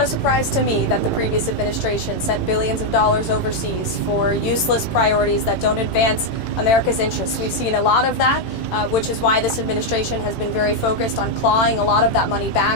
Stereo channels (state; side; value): late; right; 18 ms